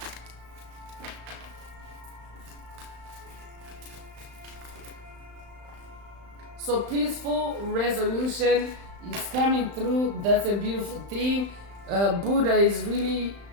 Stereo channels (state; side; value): late; left; 35 ms